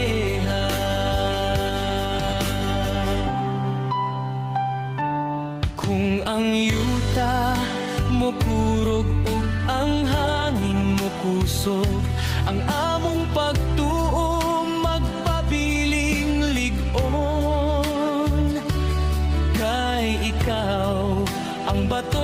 Kung ang yuta mo kurog ug ang hangin mo kusog, ang among pagtuo magpabiling lig-on. Kay ikaw ang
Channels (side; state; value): both; identical; correlation 1.00